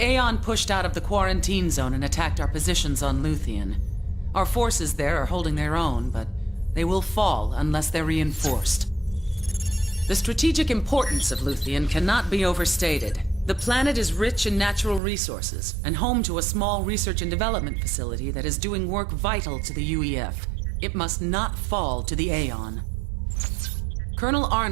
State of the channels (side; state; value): left; drops out; at 15.0 s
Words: Aeon pushed out of the quarantine zone and attacked our positions on Luthien. Our forces there are holding their own, but they will fall unless they're reinforced. The strategic importance of Luthien cannot be overstated. The planet is rich in natural resources and home to a small research and development facility that is doing work vital to the UEF. It must not fall to the Aeon. Colonel